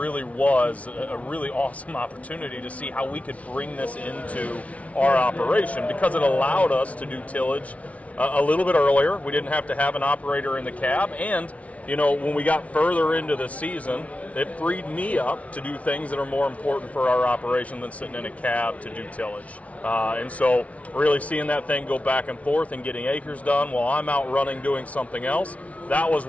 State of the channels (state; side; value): late; right; 0.066 ms